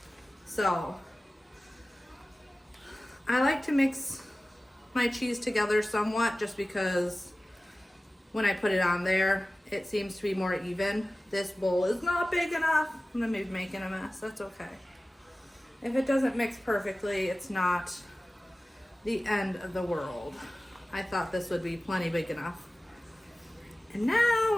So I like to mix my cheese together somewhat just because when I put it on there, it seems to be more even. This bowl is not big enough. I'm gonna be making a mess, that's okay. If it doesn't mix perfectly, it's not the end of the world. I thought this would be plenty big enough. And now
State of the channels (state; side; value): normal; both; correlation 0.97